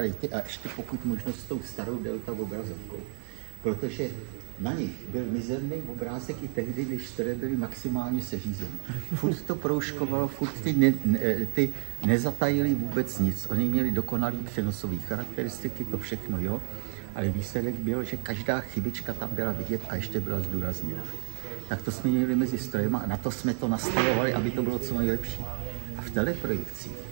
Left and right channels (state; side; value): silent; left; digital silence